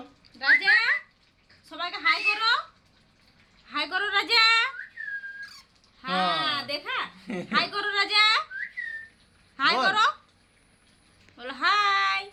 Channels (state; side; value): identical; both; correlation 1.00